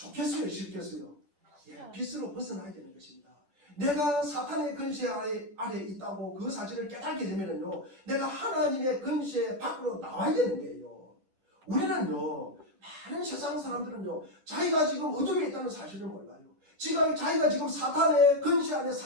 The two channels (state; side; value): late; left; 10 ms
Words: 싫겠어요? 빛으로 벗어나야 되는 것입니다. 내가 사탄의 근세 아래 있다고 그 사실을 깨닫게 되면요 내가 하나님의 근세 밖으로 나와야 되는 거예요. 우리는요 많은 세상 사람들은요 자기가 지금 어둠에 있다는 사실을 몰라요. 자기가 지금 사탄의 근세 안에